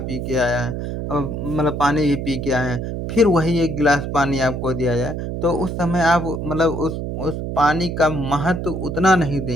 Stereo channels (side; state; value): right; noise; hum, 4 dB below the sound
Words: के आया है मतलब पानी ही पी के आए हैं, फिर वही 1 गिलास पानी आपको दिया जाए, तो उस समय आप मतलब उस पानी का महत्व उतना नहीं